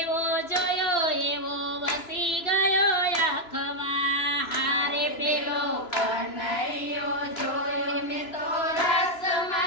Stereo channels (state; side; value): late; right; 2.9 ms